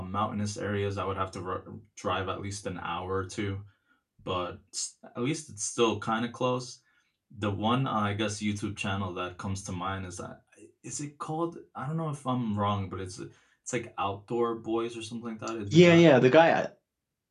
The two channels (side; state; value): both; identical; correlation 1.00